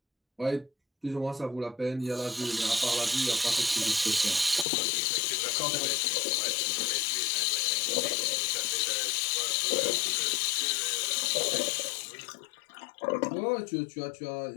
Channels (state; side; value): drops out; right; at 4.7 s